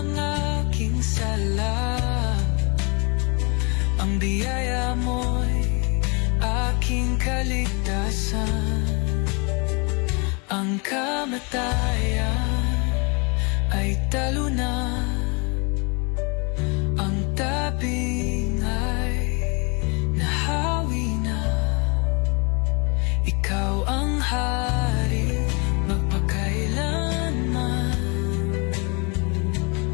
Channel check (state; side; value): quieter; right; 31.6 dB